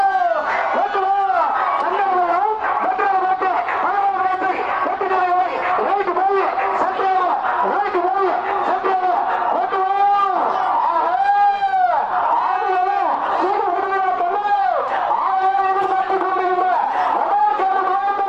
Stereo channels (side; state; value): both; identical; correlation 1.00